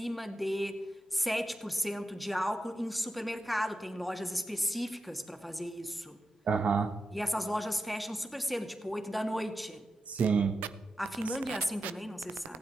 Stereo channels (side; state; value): both; normal; correlation 0.90